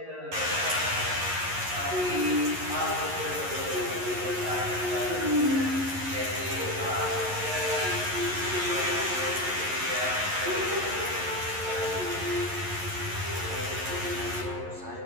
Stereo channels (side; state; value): left; late; 11 ms